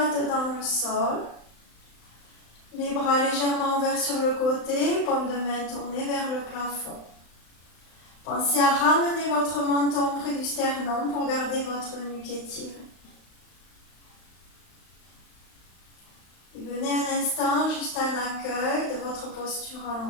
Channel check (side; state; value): right; late; 35 ms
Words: dans le sol. Les bras légèrement ouverts sur le côté, paume de main tournée vers le plafond. Pensez à ramener votre menton près du sternum pour garder votre nuque étirée. Et venez un instant juste un accueil de votre posture